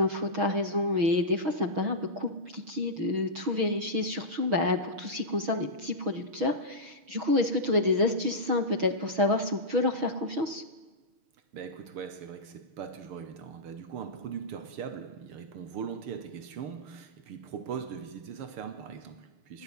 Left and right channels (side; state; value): left; late; 6.3 ms